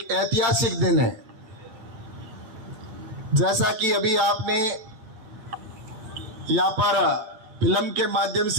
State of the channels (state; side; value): late; left; 8.7 ms